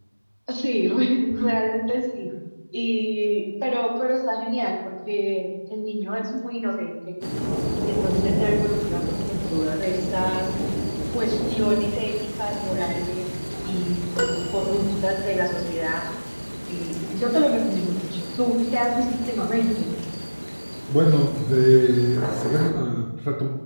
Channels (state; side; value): inverted; both; correlation -1.00